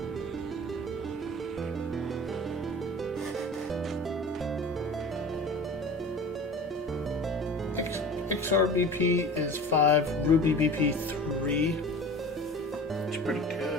XR BP is 5, Ruby BP 3. It's pretty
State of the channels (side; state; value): both; normal; correlation 0.38